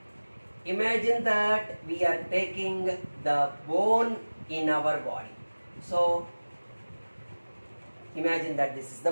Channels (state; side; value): inverted; both; correlation -1.00